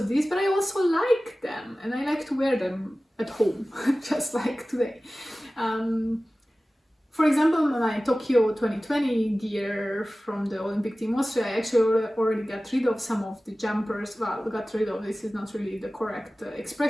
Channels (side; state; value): both; normal; correlation 0.97